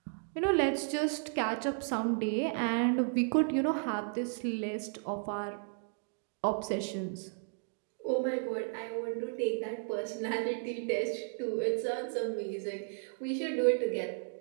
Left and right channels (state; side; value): silent; left; 55 dB below the other